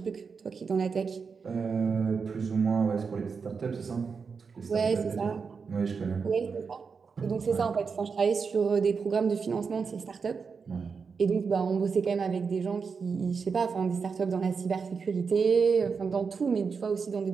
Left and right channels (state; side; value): quieter; left; 5.4 dB